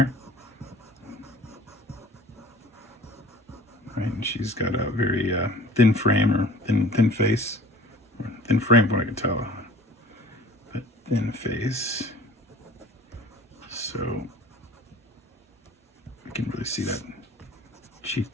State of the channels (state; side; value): normal; both; correlation 0.47